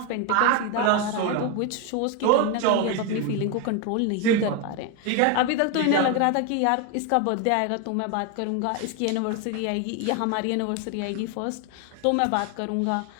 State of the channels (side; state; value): both; different; correlation 0.01